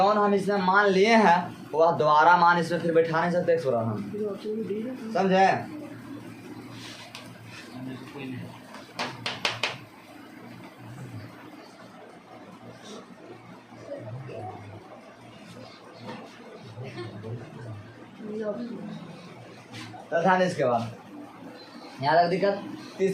हम इसमें मान लिए हैं वह दोबारा मान इसमें फिर बैठा नहीं सकते एक्स वाला हम, समझे। तो ध्यान इसके बाद यहाँ तक दिक्कत।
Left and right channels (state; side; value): identical; both; correlation 1.00